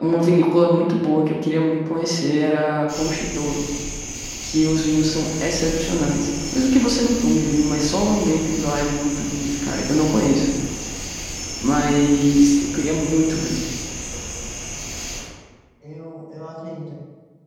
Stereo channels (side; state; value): both; identical; correlation 1.00